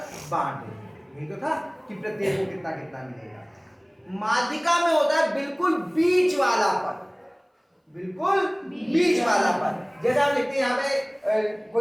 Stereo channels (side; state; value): both; identical; correlation 1.00